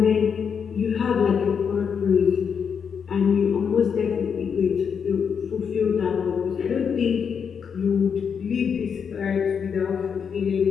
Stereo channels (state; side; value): quieter; right; 6.8 dB